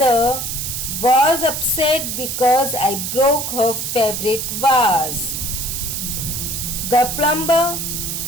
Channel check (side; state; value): right; noise; hiss, 3 dB below the sound